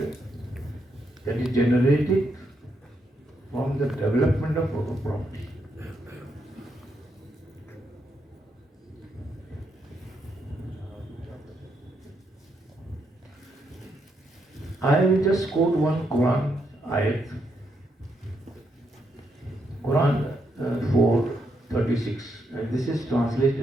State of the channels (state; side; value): normal; both; correlation 0.79